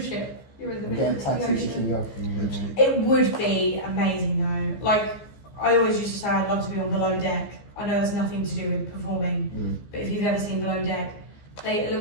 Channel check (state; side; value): late; right; 14 ms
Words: ship. You're in the middle of the ocean. It would be amazing though. Like, I always used to say I'd love to be on Below Deck. I know that's nothing to do with performing, but if you've ever seen Below Deck, it